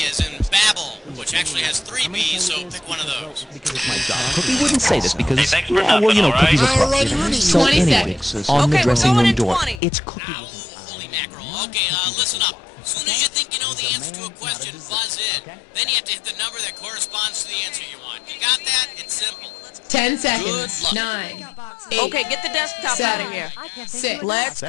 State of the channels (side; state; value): right; drops out; at 9.8 s